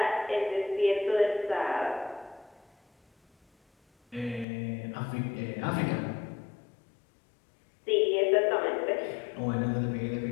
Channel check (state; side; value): drops out; right; at 4.5 s